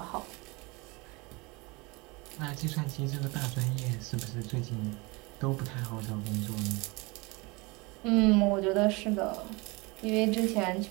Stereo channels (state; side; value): quieter; left; 26.2 dB